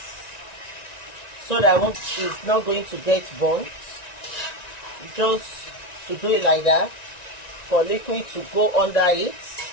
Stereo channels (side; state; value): right; late; 1.9 ms